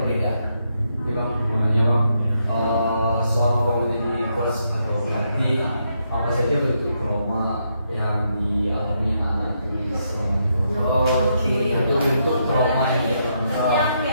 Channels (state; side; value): inverted; both; correlation -0.79